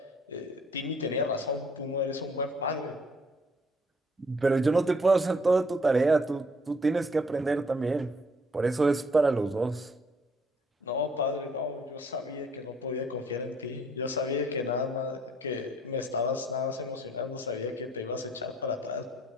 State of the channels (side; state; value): both; normal; correlation 0.63